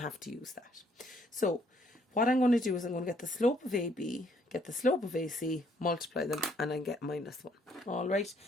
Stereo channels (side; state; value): both; normal; correlation 0.67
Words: have to use that. So, what I'm going to do is I'm going to get the slope of AB, get the slope of AC, multiply them, and I get minus 1. Alright,